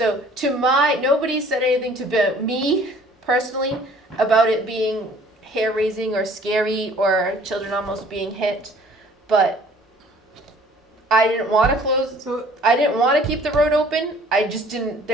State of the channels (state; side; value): normal; both; correlation 0.54